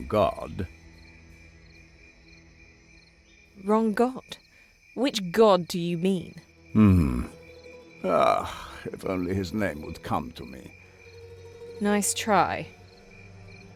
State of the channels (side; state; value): both; identical; correlation 1.00